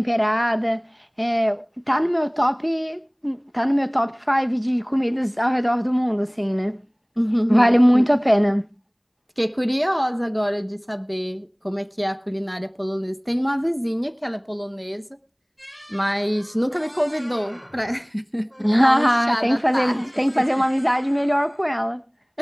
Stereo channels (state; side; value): identical; both; correlation 1.00